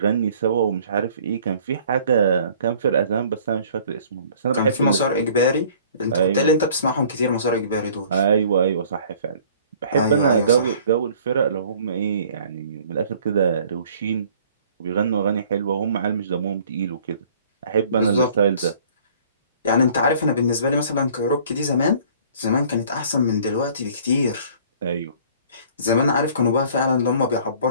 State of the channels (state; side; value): inverted; both; correlation -0.53